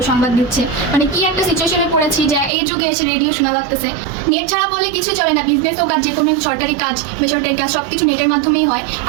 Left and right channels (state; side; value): drops out; left; at 2.5 s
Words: সংবাদ দিচ্ছে। মানে কি একটা সিচুয়েশনে পড়েছি যে এই যুগে এসে রেডিও শোনা লাগতেছে। নেট ছাড়া বলে কিছু চলে না, বিজনেস হোক আর যে কোনো সরকারি কাজ বেসরকারি কাজ সবকিছু নেটের মাধ্যমেই হয়।